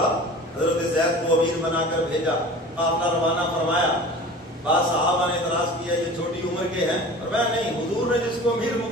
حضرت زید کو امیر بنا کر بھیجا، قافلہ روانہ فرمایا. بعض صحابہ نے اعتراض کیا یہ چھوٹی عمر کے ہیں، اور میں نہیں، حضور نے جس کو امیر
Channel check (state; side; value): normal; both; correlation 0.39